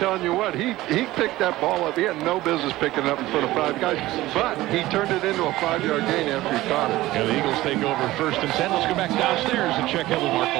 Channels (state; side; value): quieter; left; 17.1 dB